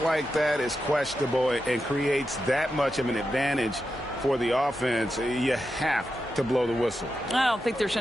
like that is questionable and creates that much of an advantage for the offense, you have to blow the whistle. I don't think there's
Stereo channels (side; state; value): both; normal; correlation 0.89